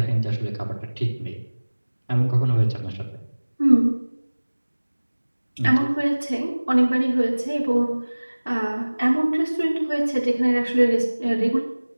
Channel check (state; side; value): inverted; both; correlation -1.00